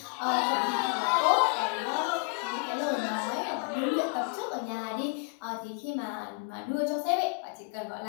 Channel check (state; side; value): quieter; right; 36.9 dB